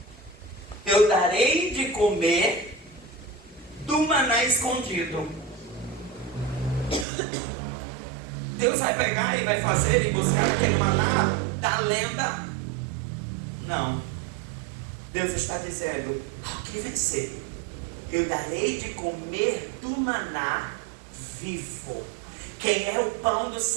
eu darei de comer do maná escondido. Deus vai pegar e vai fazer e buscar aquele maná da lenda? Não. Deus está dizendo: ao que vencer, eu darei de comer do maná vivo. Quem é o pão do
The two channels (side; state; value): left; drops out; at 7.1 s